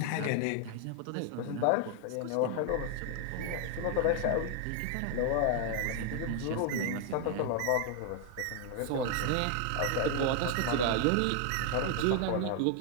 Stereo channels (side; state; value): both; different; correlation 0.00